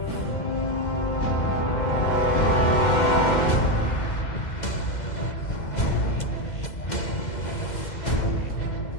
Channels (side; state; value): right; late; 2.0 ms